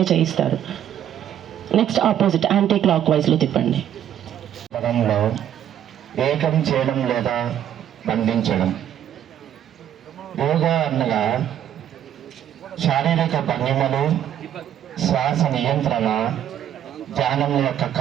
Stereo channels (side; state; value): left; quieter; 10.5 dB